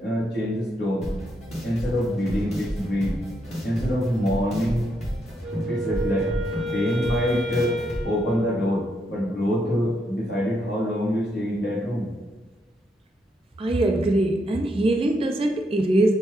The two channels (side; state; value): both; normal; correlation 0.78